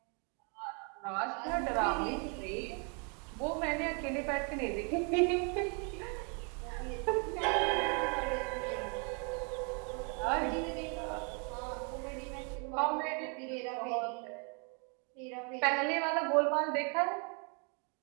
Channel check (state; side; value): quieter; left; 37.2 dB